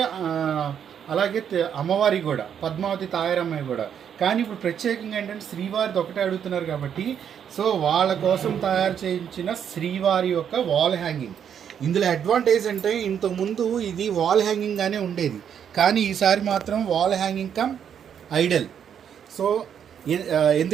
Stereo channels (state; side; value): quieter; left; 8.4 dB